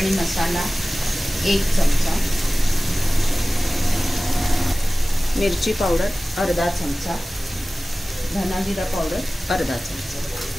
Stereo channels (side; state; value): both; normal; correlation 0.97